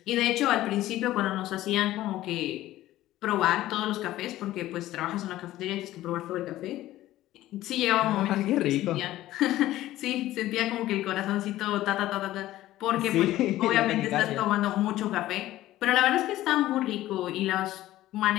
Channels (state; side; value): quieter; right; 15.1 dB